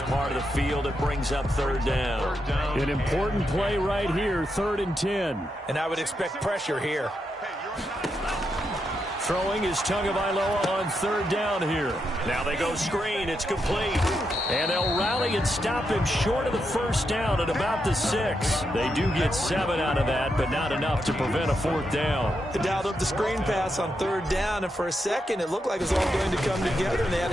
part of the field. It brings up 3rd down. An important play right here, 3rd and 10. And I would expect pressure here. Throwing is Tagovailoa on 3rd down here. Now they go screen. It's complete. And they'll rally and stop him short of the first down at about the 6. They do get 7 out of that, but not enough to prevent a 4th down. They dialed up the screen pass on 3rd down, and for a second it looked like it was all going to come together, and they had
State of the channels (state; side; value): normal; both; correlation 0.83